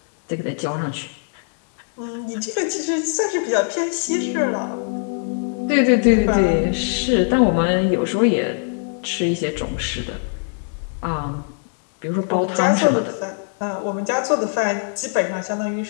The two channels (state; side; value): silent; right; 65 dB below the other